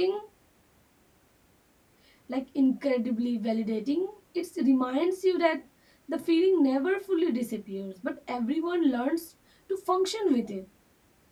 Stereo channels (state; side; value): identical; both; correlation 1.00